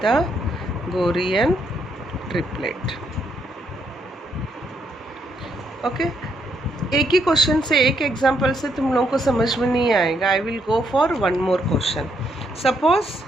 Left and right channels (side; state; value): both; normal; correlation 0.75